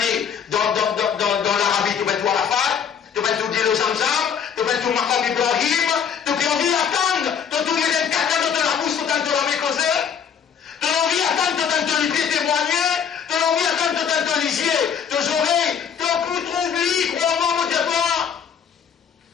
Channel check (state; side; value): quieter; right; 7.5 dB